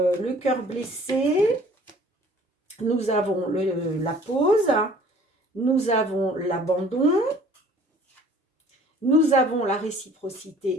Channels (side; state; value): both; normal; correlation 0.52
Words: cœur blessé. Nous avons la pause. Nous avons l'abandon. Nous avons la